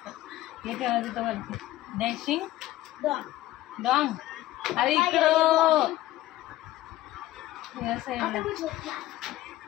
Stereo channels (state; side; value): quieter; right; 15.7 dB